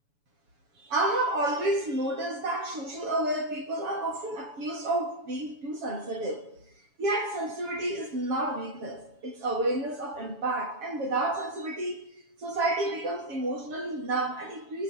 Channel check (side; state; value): left; late; 7.1 ms